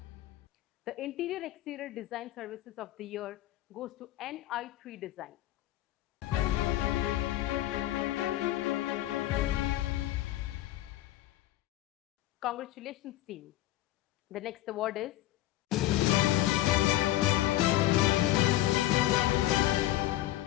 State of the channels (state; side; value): quieter; right; 15.1 dB